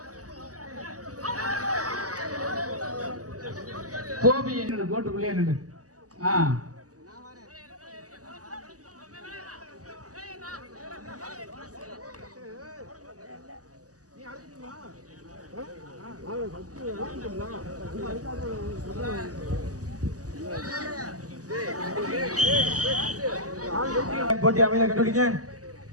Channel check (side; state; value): left; late; 0.67 ms